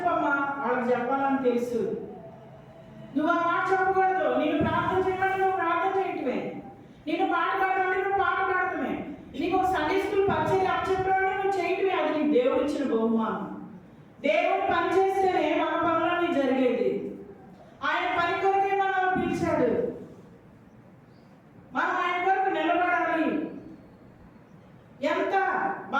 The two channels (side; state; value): both; identical; correlation 1.00